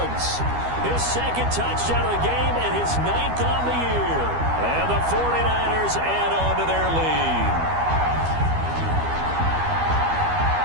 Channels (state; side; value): late; left; 12 ms